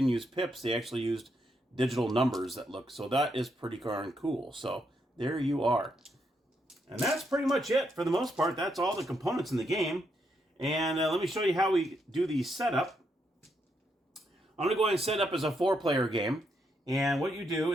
use pips. They actually used digital numbers that look. So that is pretty darn cool. So there you are. And that's pretty much it for the most part. That's all the components in the game. And let me show you how we do the setup. I'm going to go ahead and set up as a 4-player game. And what you do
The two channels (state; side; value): normal; both; correlation 0.79